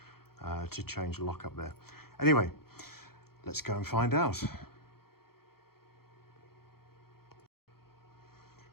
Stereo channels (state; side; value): late; right; 0.94 ms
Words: to change the lock up there. Anyway, let's go and find out.